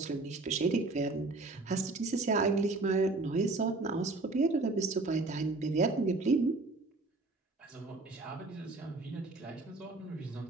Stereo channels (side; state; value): left; quieter; 3.3 dB